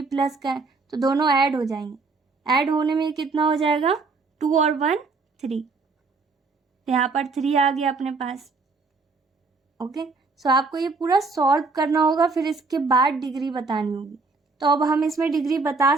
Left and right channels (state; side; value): quieter; left; 4.1 dB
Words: प्लस का है, तो दोनों ऐड हो जाएंगे। ऐड होने में कितना हो जाएगा, 2 और 1 3, यहाँ पर 3 आ गया अपने पास। ओके, सो आपको ये पूरा सॉल्व करना होगा, फिर इसके बाद डिग्री बतानी होगी। तो अब हम इसमें डिग्री बता